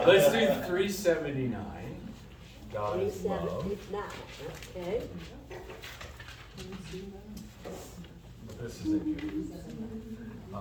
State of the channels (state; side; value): identical; both; correlation 1.00